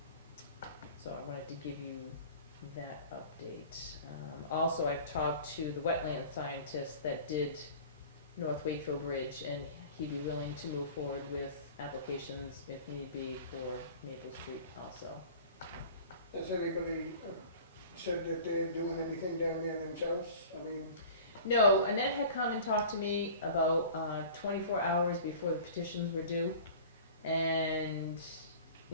So I wanted to give you that update. Also, I've talked to the wetland scientist that did North Wakefield Bridge, and he'd be willing to move forward with applications if need be for Maple Street also. Has anybody said that they're doing anything down there themselves? I mean, No, Annette had come and talked to me about 24 hours before the petitions were due, and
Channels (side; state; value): both; inverted; correlation -0.42